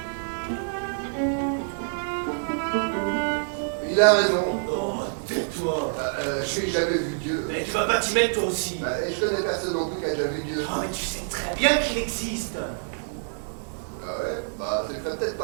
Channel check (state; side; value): silent; left; digital silence